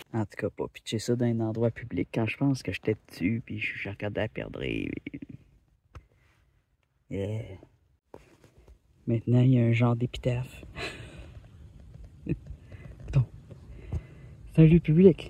En tout cas, pas pitcher ça dans un endroit public quand je pense que j'étais dessus puis je regardais à perdre. Yeah. Maintenant, il y a un genre d'épitaphe. Bon. C'est un lieu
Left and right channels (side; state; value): both; identical; correlation 1.00